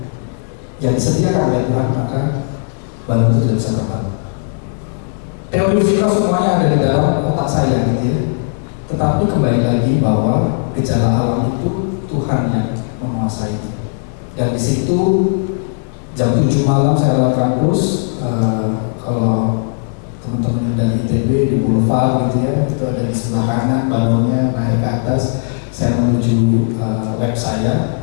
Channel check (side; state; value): right; silent; 69 dB below the other